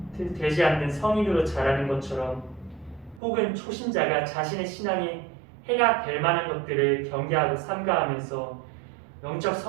되지 않는 성인으로 자라는 것처럼, 혹은 초신자가 자신의 신앙에 해가 될 만한 것들을 경계하고 삼가하면서 영적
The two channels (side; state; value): left; drops out; at 3.2 s